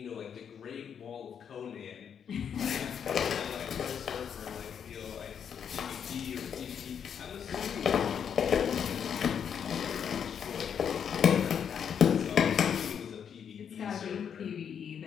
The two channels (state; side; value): quieter; right; 7.8 dB